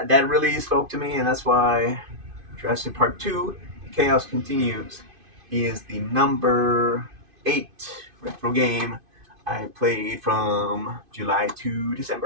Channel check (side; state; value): left; late; 2.5 ms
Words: really spoke to me, and that's why Jurassic Park 2, Chaos Continues, is the number 8 retro game I played from July to